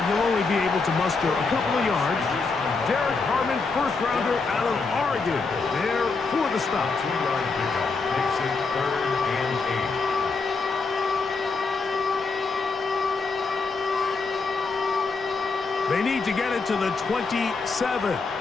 he'll only be able to muster a couple of yards. Derek Harmon, first-rounder out of Oregon, there for the stop. 2-yard pickup makes it 3rd and 8. They need to get it to the 27.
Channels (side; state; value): right; quieter; 4.3 dB